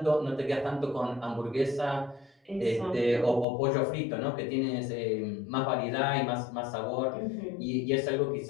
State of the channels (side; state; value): right; drops out; at 3.5 s